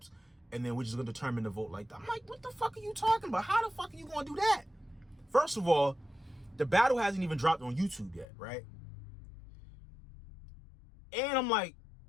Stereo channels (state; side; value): drops out; right; at 8.2 s